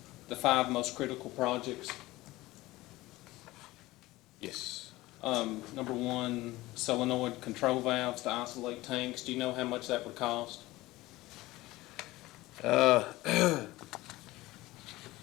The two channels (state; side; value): quieter; right; 18.7 dB